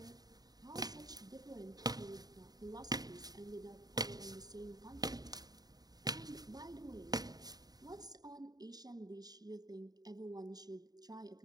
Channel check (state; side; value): late; left; 0.19 ms